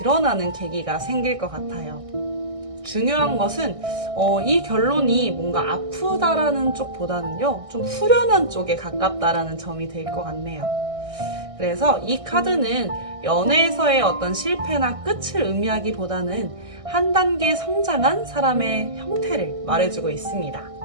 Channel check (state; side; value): late; left; 1.6 ms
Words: 계기가 생길 것 같아요. 중요한 것은 이 결론이 뭔가 아프다라는 쪽보다는요, 좀 후련한 쪽에 가깝다라는 점이 될 것 같네요. 그래서 이 카드는 연애에서의 어떤 실패나 끝을 의미하기보다는 한 단계 성장한 사람의 형태를 말해주고 있습니다.